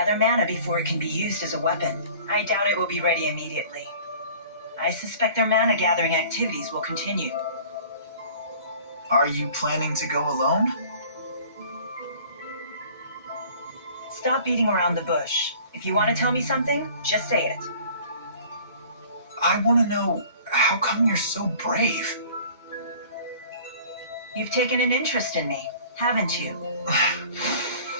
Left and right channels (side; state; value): both; inverted; correlation -0.47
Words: mana before it can be used as a weapon. I doubt it will be ready immediately. I suspect their mana gathering activities will continue. Are you planning to go alone? Stop beating around the bush. If you want to tell me something, just say it. I want to know, how come you're so brave? You've taken an interest in me, haven't you?